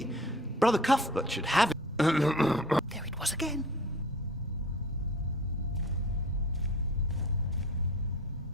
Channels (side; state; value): both; normal; correlation 0.43